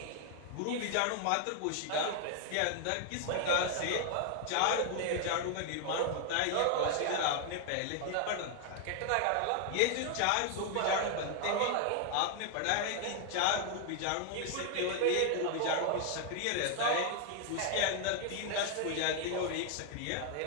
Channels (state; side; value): different; both; correlation 0.00